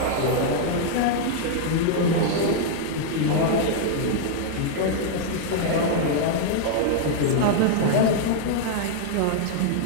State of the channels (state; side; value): different; both; correlation -0.01